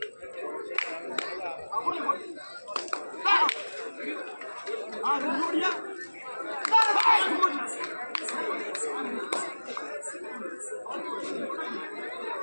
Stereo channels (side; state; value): both; inverted; correlation -1.00